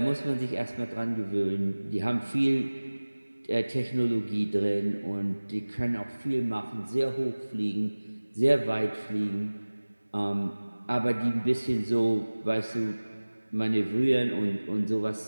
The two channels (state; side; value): inverted; both; correlation -1.00